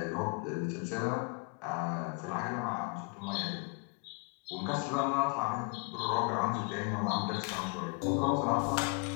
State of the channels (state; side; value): quieter; right; 35.4 dB